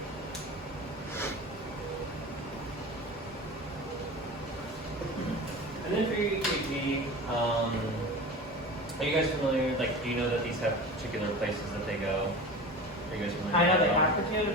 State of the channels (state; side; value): normal; both; correlation 0.32